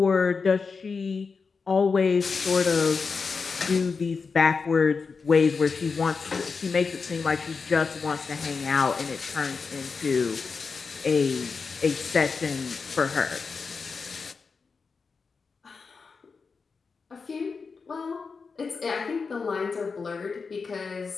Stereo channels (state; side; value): quieter; right; 4.9 dB